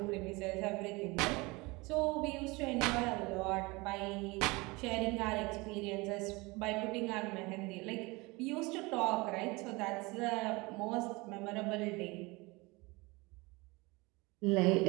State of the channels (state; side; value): quieter; left; 24.5 dB